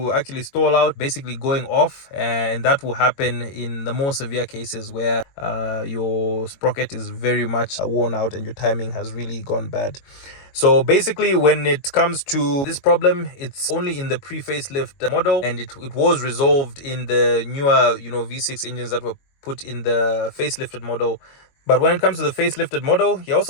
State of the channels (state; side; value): late; right; 22 ms